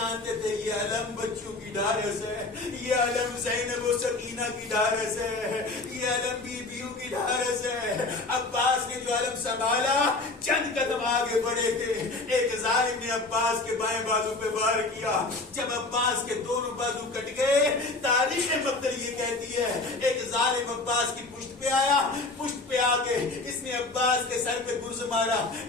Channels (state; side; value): quieter; right; 3.3 dB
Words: تھے یہ علم بچوں کی ڈھارس ہے، یہ علم زینب و سکینہ کی ڈھارس ہے، یہ علم بیویوں کی ڈھارس ہے۔ عباس نے جو علم سنبھالا، چند قدم آگے بڑھے تھے، ایک ظالم نے عباس کے بائیں بازو پہ وار کیا، جب عباس کے دونوں بازو کٹ گئے، تاریخ مقتل یہ کہتی ہے ایک ظالم عباس کی پشت پشت پہ آیا, پشت پہ آ کے اس نے عباس کے سر پہ گرز مارا,